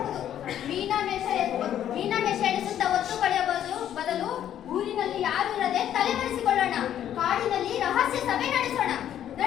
ಮೀನಾಮೇಷ ಎಣಿಸುತ್ತಾ ಒತ್ತು ಕಳೆಯಬಹುದು ಬದಲು ಊರಿನಲ್ಲಿ ಯಾರು ಇರದೆ ತಲೆ ಮರೆಸಿಕೊಳ್ಳೋಣ. ಕಾಡಿನಲ್ಲಿ ರಹಸ್ಯ ಸಭೆ ನಡೆಸೋಣ.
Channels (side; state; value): right; quieter; 10.7 dB